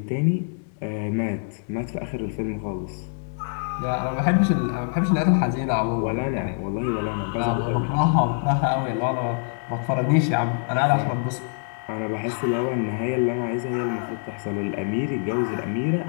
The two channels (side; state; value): right; silent; digital silence